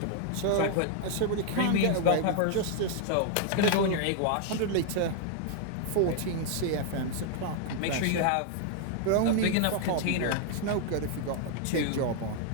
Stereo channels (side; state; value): both; different; correlation 0.00